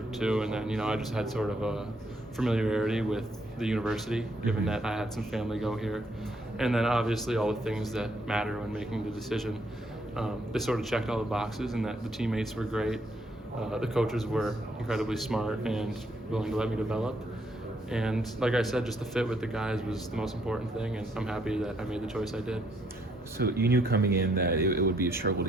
to. And then I just had sort of a familiarity with the university, given that I had some family go here, and then obviously all the things that matter when making the decision. They sort of checked all the boxes, and that the teammates were great. The coaches were incredibly smart and willing to let me develop. And like I said, just the fit with the guys was the most important thing, and I'm happy that I made the choice I did. So you knew coming in that it would be a struggle to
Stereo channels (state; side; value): normal; both; correlation 0.71